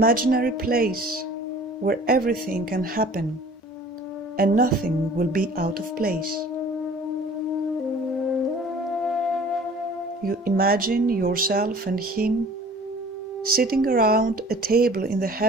place where everything can happen and nothing will be out of place. You imagine yourself and him sitting around a table in the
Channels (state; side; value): normal; both; correlation 0.47